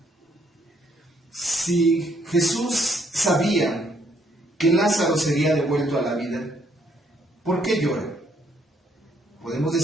Si Jesús sabía que Lázaro sería devuelto a la vida, ¿por qué llora? Podemos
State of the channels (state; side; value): normal; both; correlation 0.69